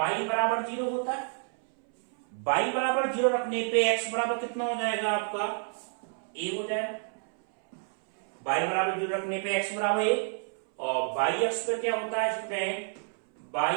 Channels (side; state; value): left; silent; 58 dB below the other